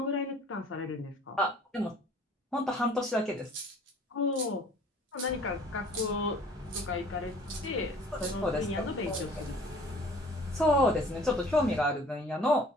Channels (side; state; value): both; normal; correlation 0.51